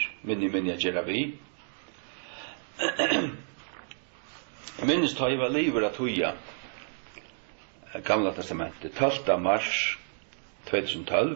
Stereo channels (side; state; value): left; silent; digital silence